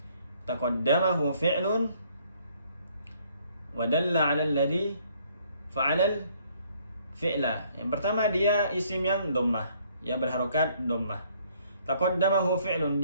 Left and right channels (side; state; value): both; inverted; correlation -0.64